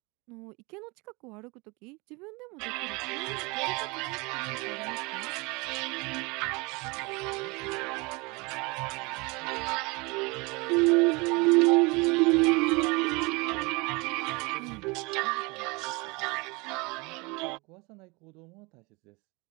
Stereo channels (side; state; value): left; quieter; 26.9 dB